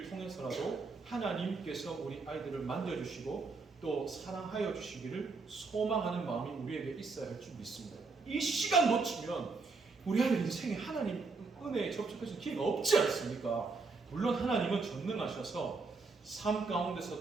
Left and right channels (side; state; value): left; quieter; 4.1 dB